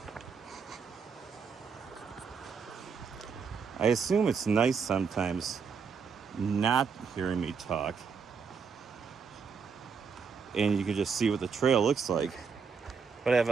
I assume it's nice sometimes not hearing me talk, and you can just see what the trail looks like. But I have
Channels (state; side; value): quieter; left; 5.8 dB